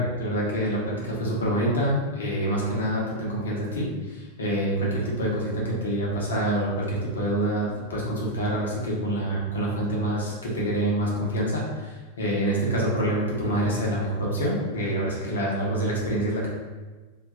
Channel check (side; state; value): both; normal; correlation -0.02